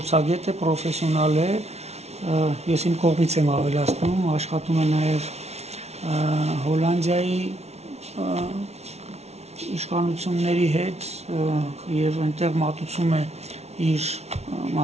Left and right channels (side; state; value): left; late; 0.31 ms